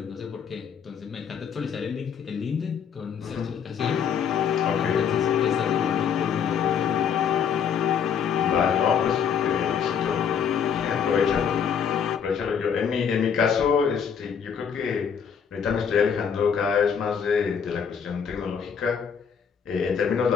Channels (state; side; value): quieter; right; 7.3 dB